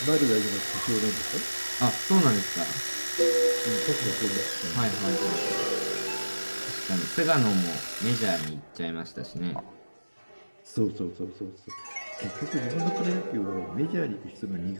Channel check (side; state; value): both; inverted; correlation -1.00